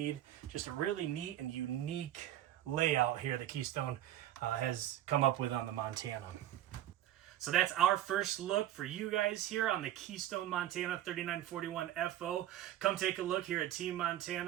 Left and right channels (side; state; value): left; quieter; 12.6 dB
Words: Just a really neat and unique layout here that Keystone has come up with on the Montana. So that's our first look for you guys here on the Keystone Montana 3941 FO. Come take a look here at Team